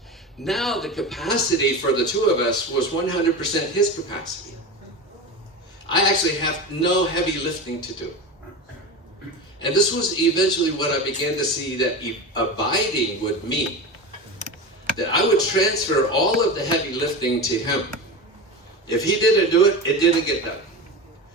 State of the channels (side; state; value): both; normal; correlation 0.26